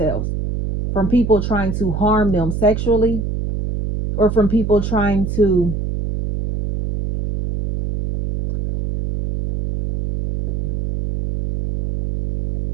from people trying to harm them sexually, or from people trying to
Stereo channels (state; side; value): noise; right; hum, 3 dB below the sound